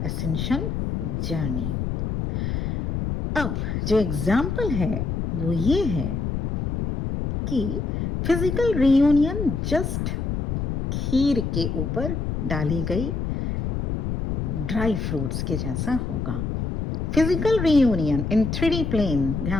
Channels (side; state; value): left; noise; rumble, 2 dB below the sound